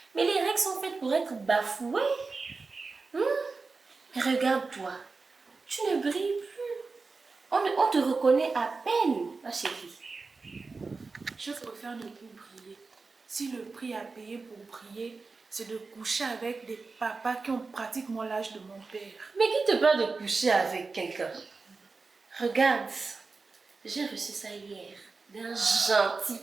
Mais les règles sont faites pour être bafouées. Regarde-toi, tu ne brilles plus. On te reconnaît à peine, ma chérie. Je préfère ne plus briller. si le prix à payer pour prier, c'est de coucher avec des papas qui ont pratiquement l'âge de mon père. Mais qui te parle de coucher avec quelqu'un? Regarde, j'ai reçu ça hier d'un gentil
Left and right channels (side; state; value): left; quieter; 4.1 dB